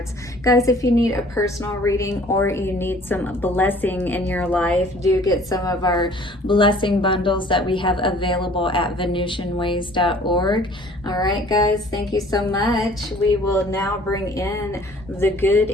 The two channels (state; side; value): normal; both; correlation 0.52